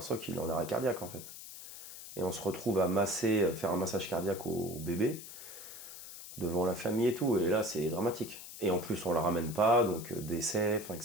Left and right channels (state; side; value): noise; left; hiss, 13 dB below the sound